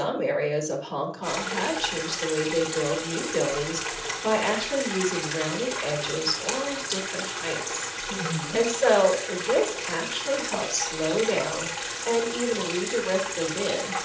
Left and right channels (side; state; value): both; identical; correlation 1.00